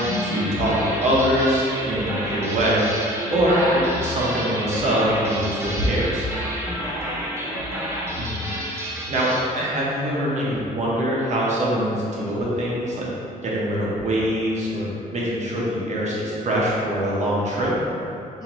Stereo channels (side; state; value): both; normal; correlation 0.46